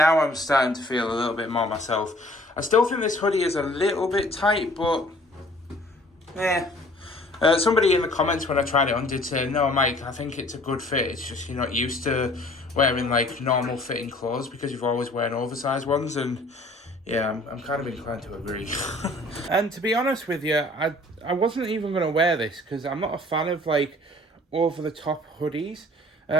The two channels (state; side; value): normal; both; correlation 0.53